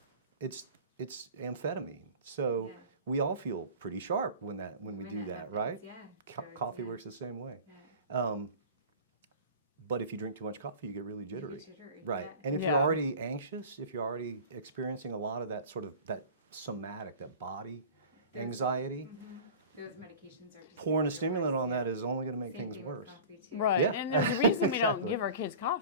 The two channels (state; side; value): inverted; both; correlation -0.38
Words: it's amphetamine. So we all feel pretty sharp when we do that, right? Coffee works the same way. But if you drink too much coffee, you get really jittery. Right. And if you're already anxious, if you're already experiencing a lot of that sort of that somatic, that body anxiety, those medications are just pouring a stimulant on that is only going to make things worse. Right. Yeah. And there's a reason we don't Exactly. give our kids